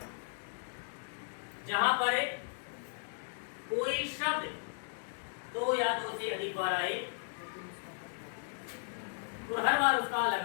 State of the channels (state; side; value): silent; right; digital silence